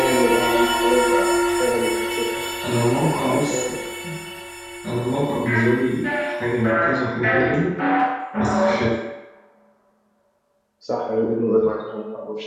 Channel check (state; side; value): identical; both; correlation 1.00